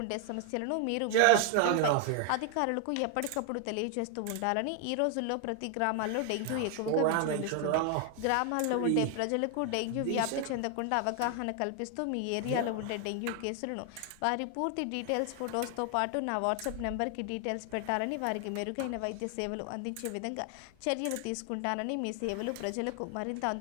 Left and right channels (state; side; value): different; both; correlation 0.00